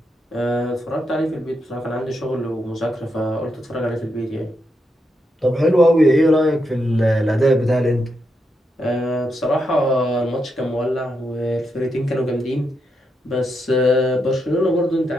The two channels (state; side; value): normal; both; correlation 0.83